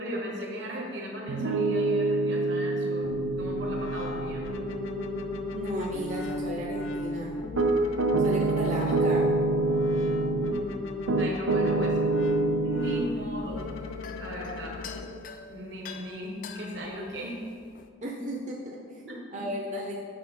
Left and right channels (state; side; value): normal; both; correlation 0.47